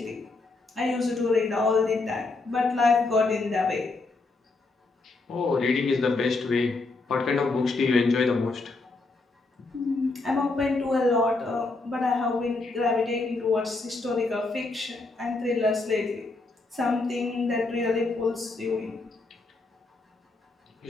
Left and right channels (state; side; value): quieter; right; 3.5 dB